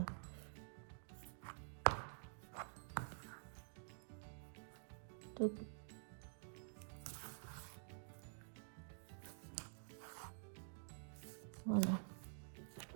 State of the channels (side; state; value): left; silent; digital silence